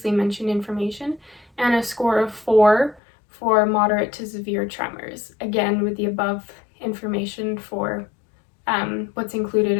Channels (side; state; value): right; drops out; at 3.0 s